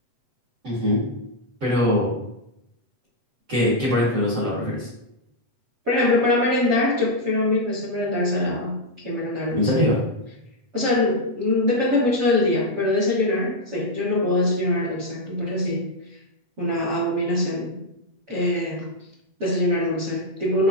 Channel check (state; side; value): late; left; 7.9 ms